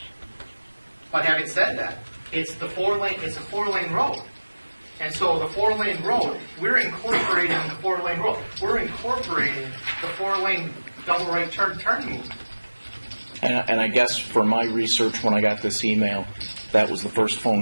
But having said that, it's a 4-lane road. And so the 4-lane road, we're incorporating the 4-lane road. We're incorporating the 4-lane double right turning movement. And I guess for my research, when I got this email, that was the first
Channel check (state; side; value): inverted; both; correlation -1.00